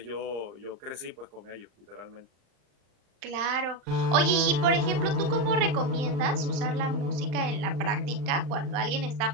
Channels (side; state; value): left; late; 35 ms